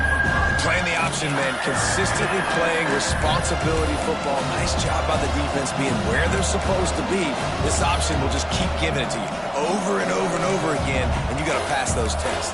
Playing the option, man. Consistently playing responsibility football. Nice job by the defense being where they're supposed to be. This option will just keep giving it to you over and over and over again, and you got to pass those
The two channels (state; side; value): identical; both; correlation 1.00